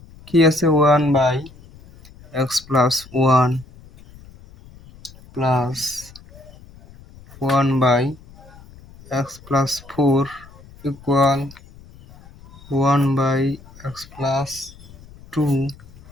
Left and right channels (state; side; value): noise; left; rumble, 22 dB below the sound